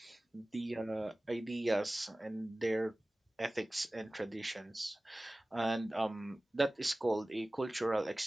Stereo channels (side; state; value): both; normal; correlation 0.98